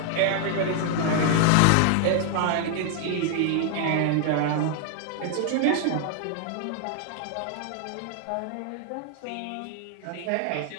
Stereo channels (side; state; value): both; different; correlation 0.00